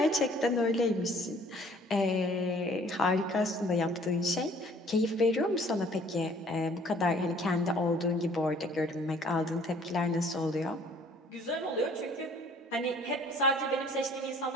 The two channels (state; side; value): normal; both; correlation 0.56